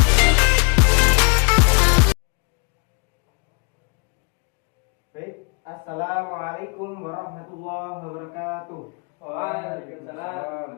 assalamualaikum warahmatullahi wabarakatuh.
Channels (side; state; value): right; quieter; 34.3 dB